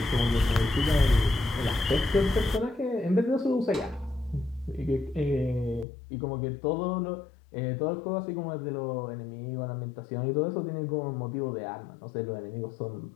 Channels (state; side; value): drops out; right; at 5.9 s